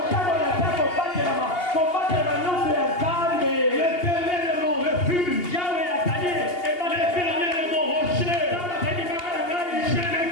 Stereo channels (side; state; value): right; late; 2.8 ms